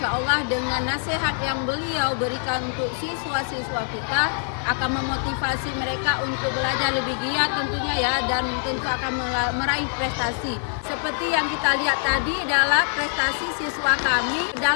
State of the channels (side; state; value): right; silent; 59 dB below the other